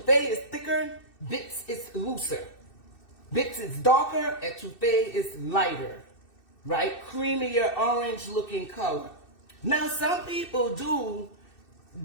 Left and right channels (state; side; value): late; right; 2.6 ms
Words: is thicker, bits is looser. Bits is darker, etouffee is lighter, right? Creamier, orange looking color. Now some people do